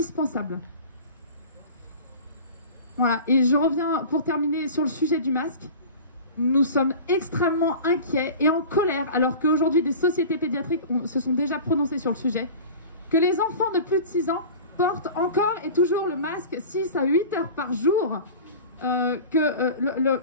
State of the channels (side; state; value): both; inverted; correlation -0.37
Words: Voilà, et je reviens pour terminer sur le sujet du masque. Nous sommes extrêmement inquiets et en colère, alors qu'aujourd'hui des sociétés pédiatriques se sont déjà prononcées sur le sujet, que les enfants de plus de 6 ans portent encore et toujours le masque 6 à 8 heures par jour.